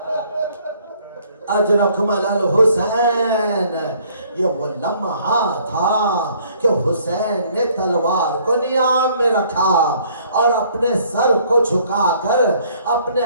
اجرکمل الحسین. یہ وہ لمحہ تھا کہ حسین نے تلوار کو نیام میں رکھا اور اپنے سر کو جھکا کر اپنے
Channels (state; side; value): inverted; both; correlation -0.61